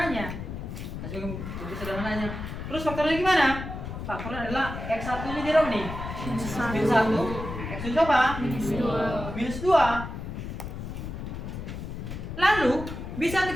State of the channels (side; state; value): left; noise; rumble, 7 dB below the sound